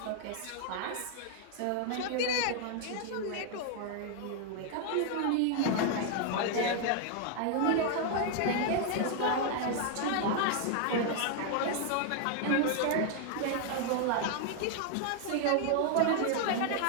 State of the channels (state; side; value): different; both; correlation 0.00